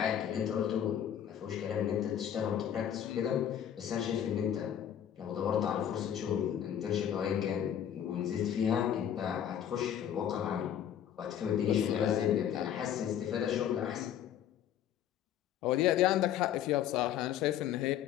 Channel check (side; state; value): right; quieter; 9.9 dB